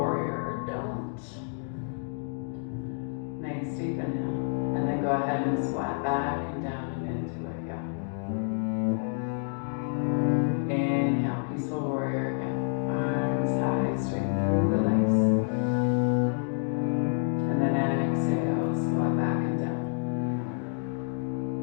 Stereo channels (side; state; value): right; silent; 57 dB below the other